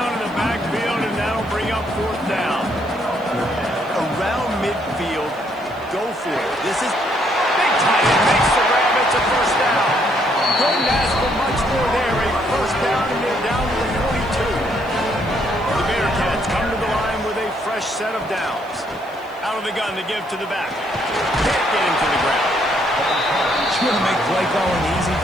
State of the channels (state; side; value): noise; right; hiss, 28 dB below the sound